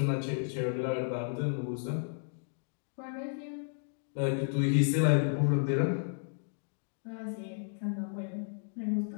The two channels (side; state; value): right; silent; digital silence